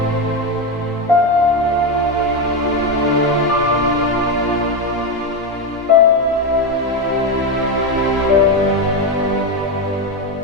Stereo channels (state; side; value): normal; both; correlation 0.11